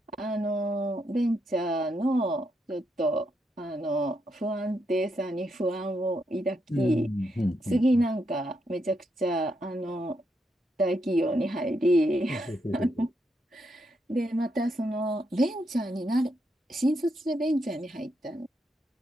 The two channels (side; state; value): both; normal; correlation 0.80